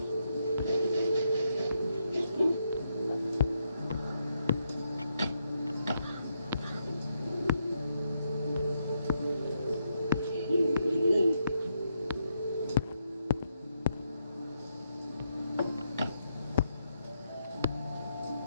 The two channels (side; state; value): both; inverted; correlation -0.80